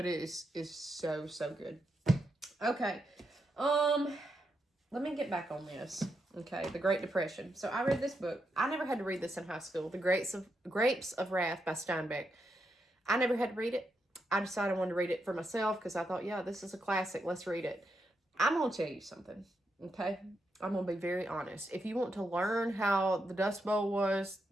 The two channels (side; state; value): both; normal; correlation 0.83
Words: it is so good. Okay. Let me get back on this. Okay, the Great Depression. So I read this book. I never had to read this in high school. The Grapes of Wrath by Steinbeck. I never had to read it. I decided I wanted to read it for myself because I thought, yeah, this is a classic. Let's read it. I'm going to tell you something, okay? I'm going to be very honest. If you want to learn how the Dust Bowl was,